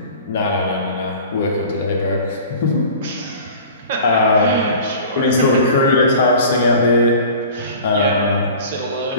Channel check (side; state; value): both; inverted; correlation -0.42